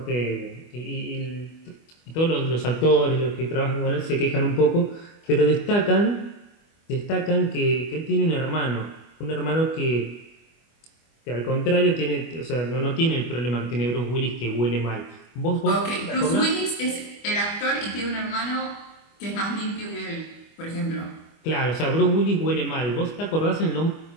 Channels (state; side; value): late; right; 25 ms